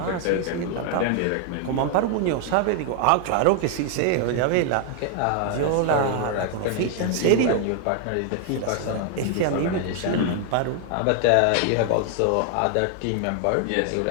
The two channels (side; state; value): both; different; correlation 0.00